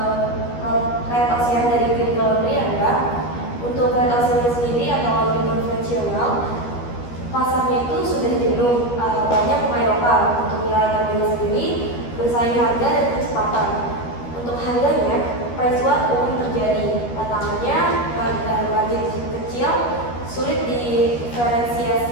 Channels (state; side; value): late; right; 13 ms